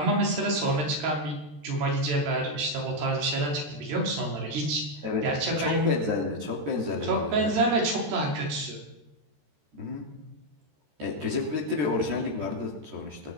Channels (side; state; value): left; late; 13 ms